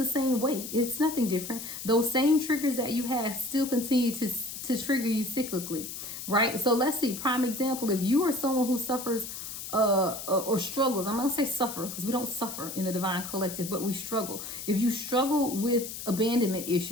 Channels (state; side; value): noise; left; hiss, 8 dB below the sound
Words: same way. It's nothing different. Those same triggers that you have still continue to trigger you cyclically, right? So let's see, prime example, if you are someone who suffers or struggles. I'm not gonna say suffer because we don't suffer in the divine collective, but we struggle. If you struggle with abandonment